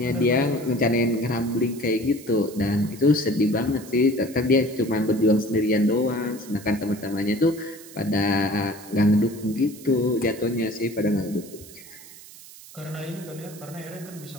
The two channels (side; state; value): right; noise; hiss, 18 dB below the sound